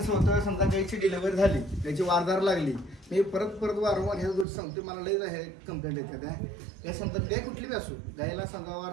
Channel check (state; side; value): drops out; left; at 4.5 s